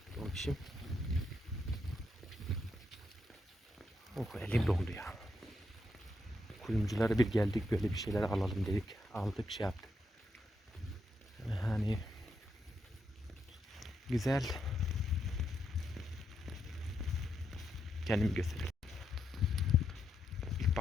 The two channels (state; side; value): normal; both; correlation 0.81